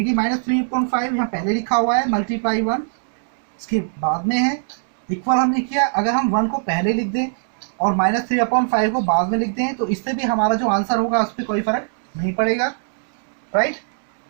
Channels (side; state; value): left; silent; digital silence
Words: कि -3/5 यहाँ पहले लिखा हुआ है, मल्टीप्लाई 1 इसके बाद में है, इक्वल हमने किया. अगर हम 1 को पहले लिख दें और -3/5 को बाद में लिख दें तो इससे भी हमारा जो आंसर होगा उस पर कोई फर्क नहीं पड़ेगा, राइट.